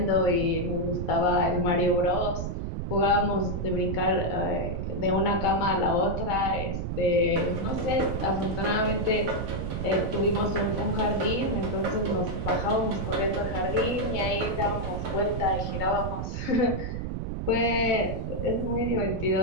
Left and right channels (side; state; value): right; noise; rumble, 3 dB below the sound